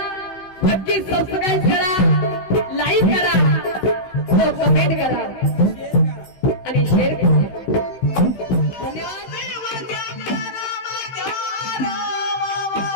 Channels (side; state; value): right; late; 15 ms